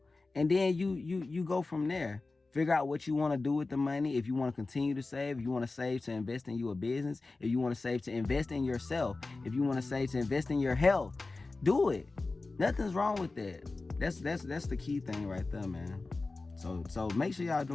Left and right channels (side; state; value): right; quieter; 3.5 dB